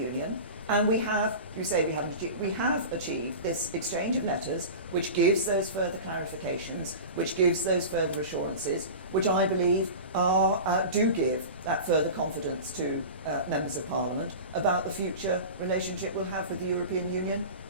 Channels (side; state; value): both; inverted; correlation -0.31